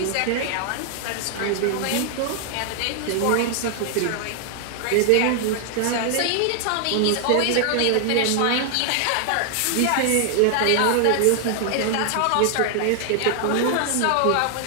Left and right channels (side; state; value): both; different; correlation 0.00